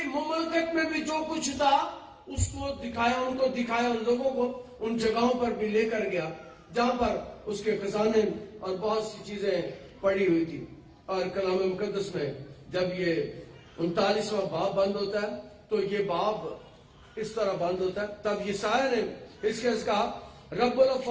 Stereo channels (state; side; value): identical; both; correlation 1.00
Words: مملکت میں بھی جو کچھ تھا اس کو دکھایا, ان کو دکھایا, ان لوگوں کو ان جگہوں پر بھی لے کر گیا جہاں پر اس کے خزانے اور بہت سی چیزیں پڑی ہوئی تھی. اور کلام مقدس میں جب یہ 39واں باب بند ہوتا ہے تو یہ باب اس طرح بند ہوتا ہے. تب یسایا نے حزقیہ سے کہا رب